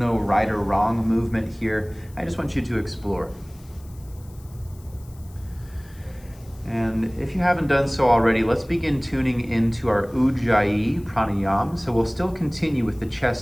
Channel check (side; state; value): left; noise; hiss, 26 dB below the sound